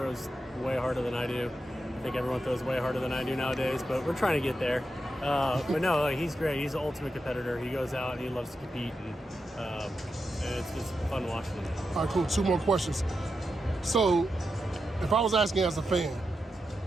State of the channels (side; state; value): both; normal; correlation 0.87